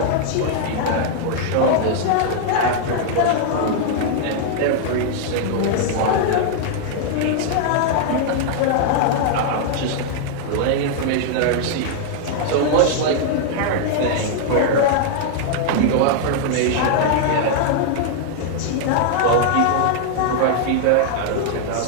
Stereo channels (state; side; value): different; both; correlation 0.00